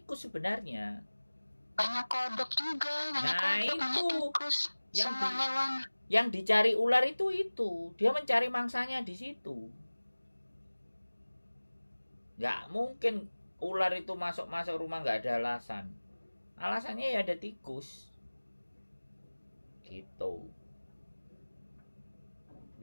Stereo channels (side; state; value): both; inverted; correlation -1.00